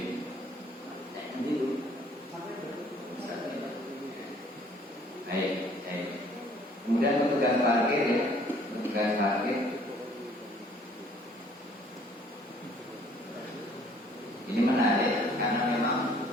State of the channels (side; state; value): both; normal; correlation 0.58